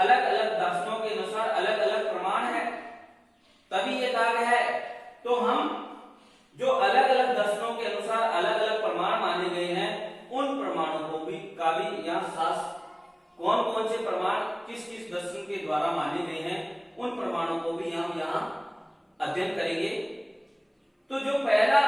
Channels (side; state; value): both; identical; correlation 1.00